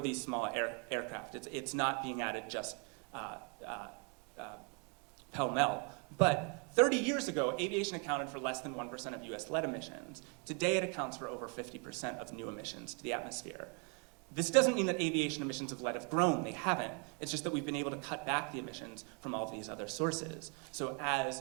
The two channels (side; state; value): left; quieter; 37.2 dB